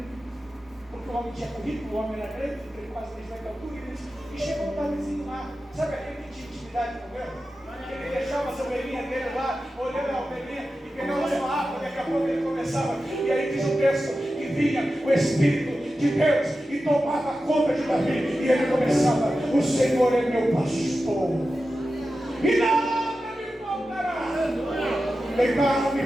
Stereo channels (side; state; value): both; normal; correlation 0.92